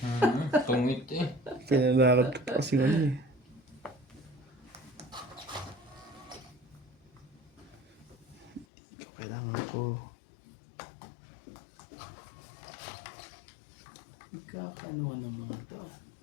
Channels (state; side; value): drops out; right; at 8.7 s